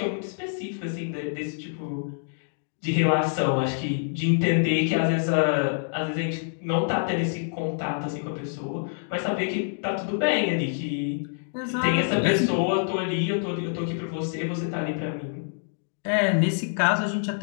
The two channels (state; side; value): silent; right; digital silence